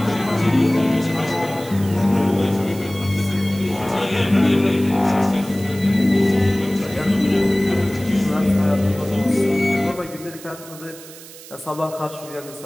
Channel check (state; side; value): noise; right; hiss, 17 dB below the sound